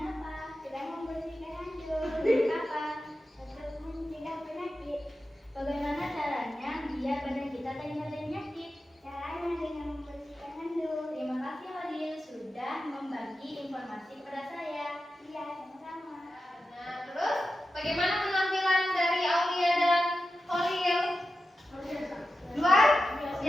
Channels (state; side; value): normal; both; correlation 0.92